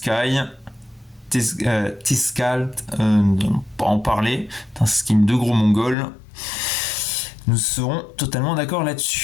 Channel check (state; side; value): drops out; right; at 6.0 s